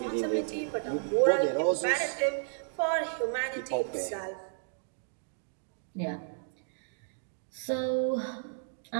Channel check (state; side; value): silent; left; digital silence